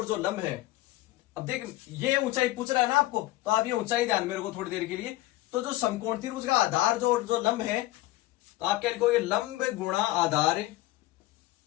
जो लंब है। अब देख, ये ऊंचाई पूछ रहा है ना आपको, तो आप ये ऊंचाई ध्यान में रखो थोड़ी देर के लिए। तो जो समकोण त्रिभुज का आधार जो लंब है, तो आप क्या लिखोगे? लंब गुणा आधार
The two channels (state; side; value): quieter; right; 17.2 dB